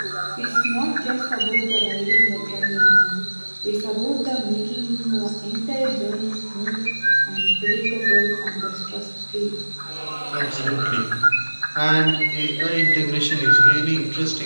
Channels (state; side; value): inverted; both; correlation -1.00